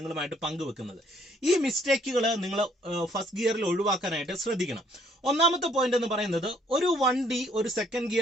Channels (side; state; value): both; normal; correlation 0.65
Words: പങ്കുവെക്കുന്നത്. ഈ മിസ്റ്റേക്കുകൾ നിങ്ങൾ ഫസ്റ്റ് ഗിയറിൽ ഒഴിവാക്കാനായിട്ട് ശ്രദ്ധിക്കണം. ഒന്നാമത്തെ പോയിന്റ് എന്ന് പറയുന്നത്, ഒരു വണ്ടി ഒരു സെക്കൻഡ്